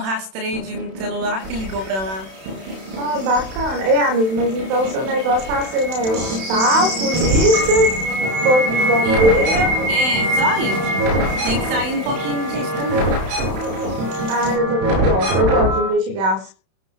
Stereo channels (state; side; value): late; left; 31 ms